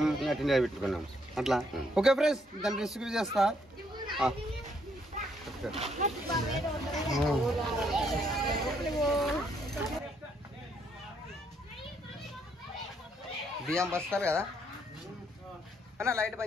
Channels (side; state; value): both; normal; correlation 0.71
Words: అట్లా పెట్టుకున్నాం అట్లా. ఓకే ఫ్రెండ్స్, దాన్ని రెసిపీ చేస్తా. బియ్యం బస్తారు కదా అన్న, లైట్